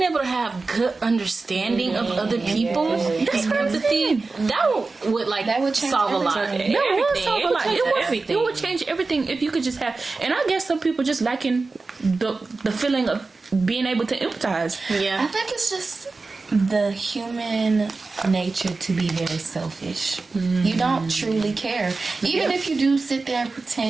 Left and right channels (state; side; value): quieter; left; 3.8 dB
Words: able to have good understanding of other people. That's empathy. That would solve a lot. That would solve a lot. It would change everything if you could just have. And I guess some people just lacking the feeling of being able to empathize. Yeah, I think it's just the human nature to be very selfish. You don't truly care, even if you do sit there and